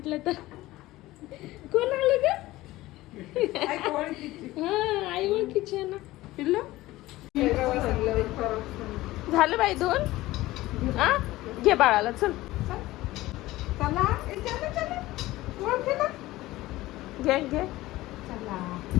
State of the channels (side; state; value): right; quieter; 17.6 dB